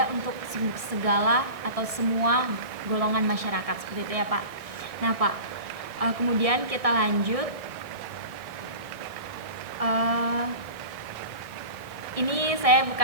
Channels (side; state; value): left; late; 1.6 ms